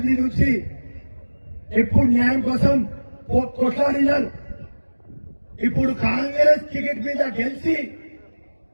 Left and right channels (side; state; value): both; inverted; correlation -1.00